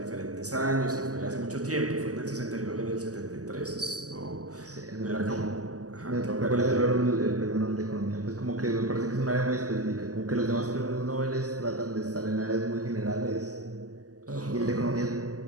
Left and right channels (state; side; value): late; left; 0.67 ms